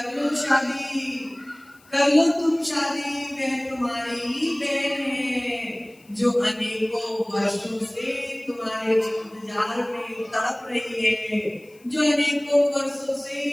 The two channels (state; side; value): noise; left; hiss, 29 dB below the sound